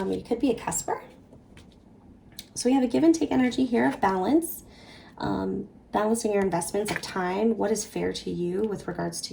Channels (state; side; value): identical; both; correlation 1.00